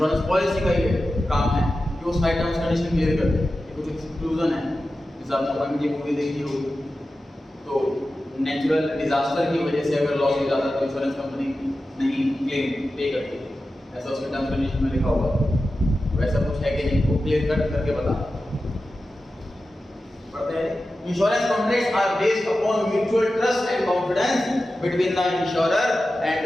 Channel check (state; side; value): normal; both; correlation 0.93